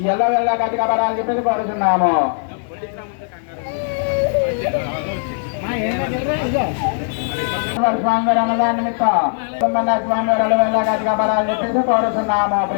ఎల్ల వెళ్ళ గట్టి కాపాడాలని చెప్పేసి కోరుతున్నాము. స్వామి వారి అన్నదాన నిమిత్తం స్వామి వారు ఎల్ల వెళ్ళ గట్టి కాపాడాలని చెప్పేసి కోరుతున్నాము.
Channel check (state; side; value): silent; right; digital silence